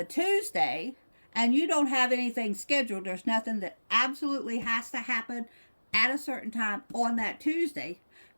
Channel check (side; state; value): both; inverted; correlation -1.00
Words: Tuesday and you don't have anything scheduled, there's nothing that absolutely has to happen at a certain time on that Tuesday,